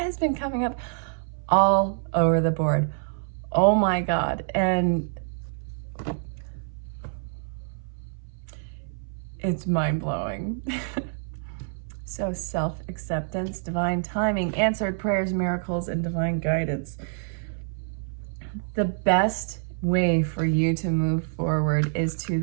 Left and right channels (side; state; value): left; silent; 58 dB below the other